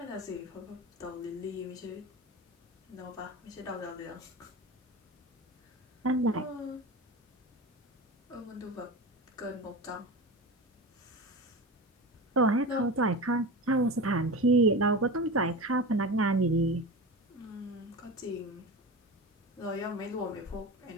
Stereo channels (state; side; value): normal; both; correlation 0.27